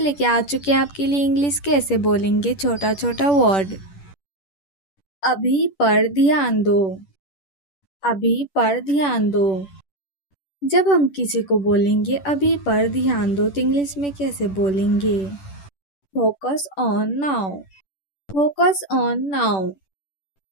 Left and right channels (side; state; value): right; late; 10 ms